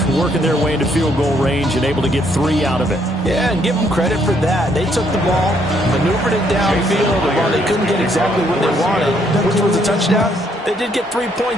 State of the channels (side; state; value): both; normal; correlation 0.70